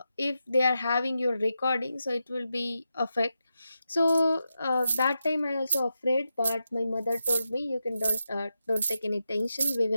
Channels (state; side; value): inverted; both; correlation -0.88